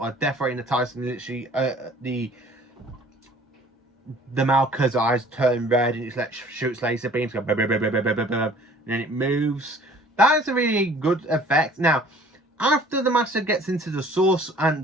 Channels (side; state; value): both; normal; correlation 0.52